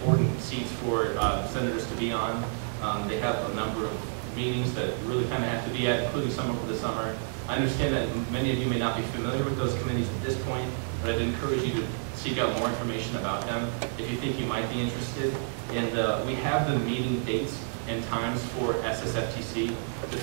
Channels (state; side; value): silent; left; digital silence